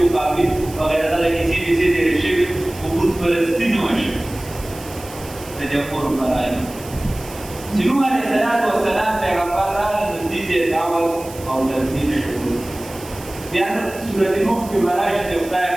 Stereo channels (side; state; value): right; noise; hiss, 17 dB below the sound